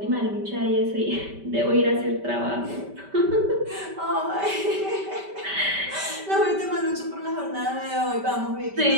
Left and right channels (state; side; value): late; left; 5.1 ms